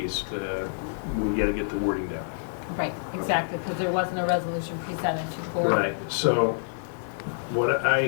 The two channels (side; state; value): right; silent; 60 dB below the other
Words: we gotta get the wording down. Right, exactly, because there wasn't a resolution presented to the board. Right, so what I